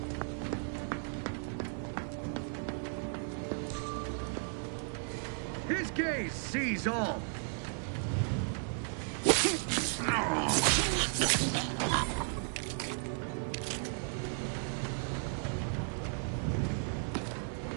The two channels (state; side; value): silent; left; 54 dB below the other